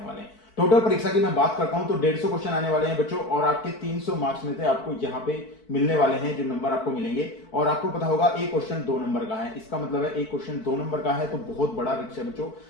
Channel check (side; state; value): right; late; 4.5 ms